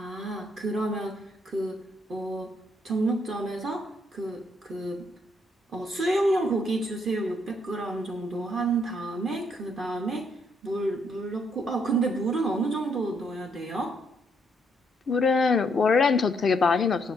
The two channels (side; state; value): both; normal; correlation 0.72